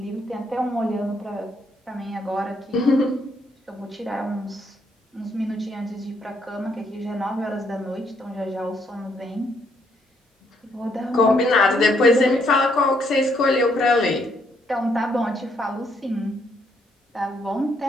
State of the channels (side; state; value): both; normal; correlation 0.72